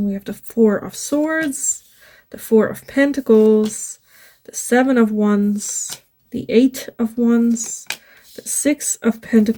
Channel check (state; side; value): identical; both; correlation 1.00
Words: we have the 4 of Swords, the 4 of Pentacles, the 7 of Wands, the 8 of Wands, the 6 of